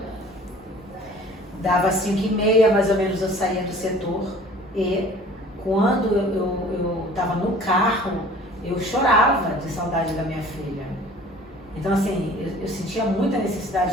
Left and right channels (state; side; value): normal; both; correlation 0.48